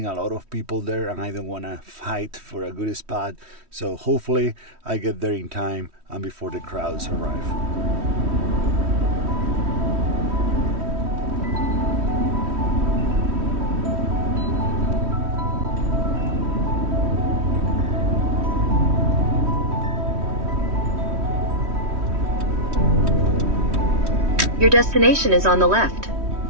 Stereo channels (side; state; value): left; late; 3.1 ms